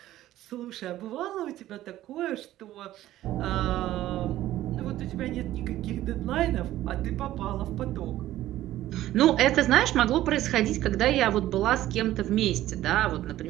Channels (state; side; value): quieter; left; 14.2 dB